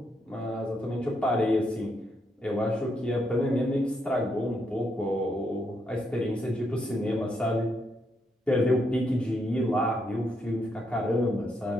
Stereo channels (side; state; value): both; normal; correlation 0.78